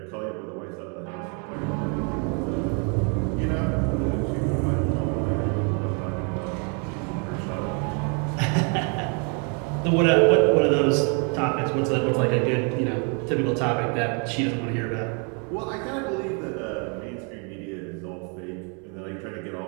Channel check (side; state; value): left; quieter; 36.9 dB